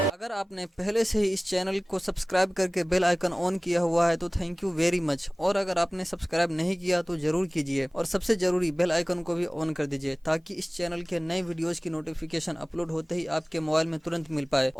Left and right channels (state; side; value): normal; both; correlation 0.98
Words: अगर आपने पहले से ही इस चैनल को सब्सक्राइब करके बेल आइकन ऑन किया हुआ है तो थैंक यू वेरी मच। और अगर आपने सब्सक्राइब नहीं किया तो ज़रूर कीजिए और सबसे ज़रूरी बेल आइकन को भी ऑन कर दीजिए ताकि इस चैनल के नए वीडियोज़ की नोटिफिकेशन अपलोड होते ही आपके मोबाइल में तुरंत मिल पाए।